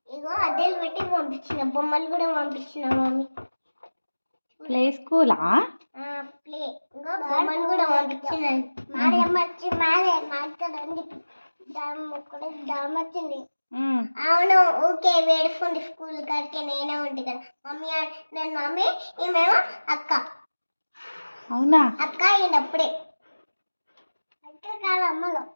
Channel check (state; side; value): inverted; both; correlation -1.00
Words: ఇగో అద్దాలు పెట్టి పంపించిన, బొమ్మలు కూడా పంపించిన మమ్మీ. ప్లే స్కూలా? ప్లే ఇంకో బొమ్మలు కూడా పంపించిన. మాడమ్మ వచ్చి మాట్లాడండి వచ్చింది. అవును ఓకే వేడుకుంది స్కూల్ కాడికి. నేనే ఉంటే కదా మమ్మీ, నేను మమ్మీ ఈమెమో అక్క. అవునా? అక్క ఈయనప్పుడే అక్క కాదు అమ్మలో.